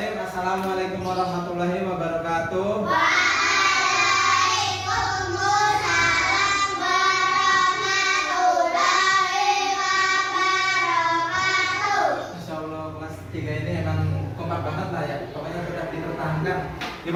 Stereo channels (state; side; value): identical; both; correlation 1.00